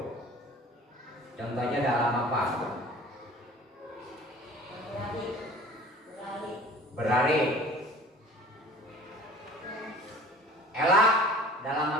Contohnya dalam apa? Berlari. Ella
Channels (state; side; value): normal; both; correlation 0.45